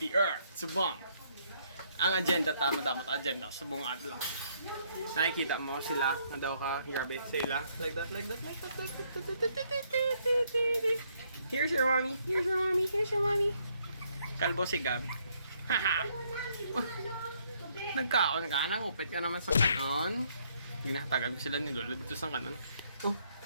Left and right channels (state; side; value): inverted; both; correlation -0.70